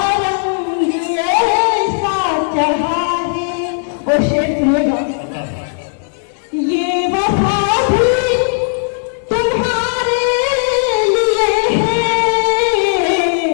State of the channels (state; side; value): silent; right; digital silence